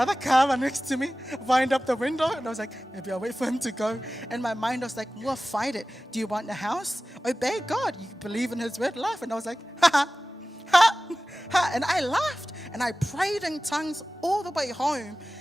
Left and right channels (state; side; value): normal; both; correlation 0.96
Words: car next to me, wind up the window, and I was like, maybe I'll wait for him to go. And my mind was like, well, fight it. Do you want a house? Obey God. You believe in his word, laugh. And I was like, ha, ha, ha, ha. And I laughed, and I prayed in tongues all the way home.